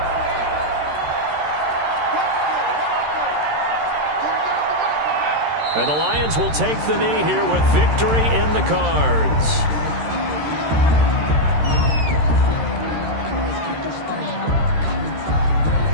And the Lions will take the knee here with victory in the cards.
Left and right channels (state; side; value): late; left; 13 ms